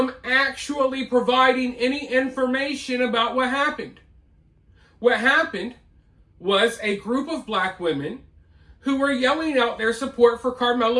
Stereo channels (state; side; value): identical; both; correlation 1.00